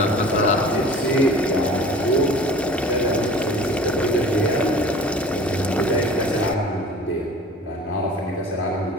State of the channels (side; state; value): both; normal; correlation 0.43